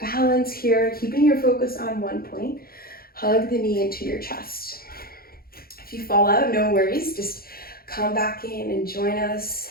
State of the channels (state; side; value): late; right; 0.44 ms